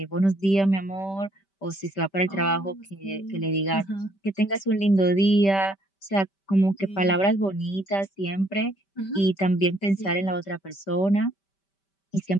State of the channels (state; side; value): late; right; 5.1 ms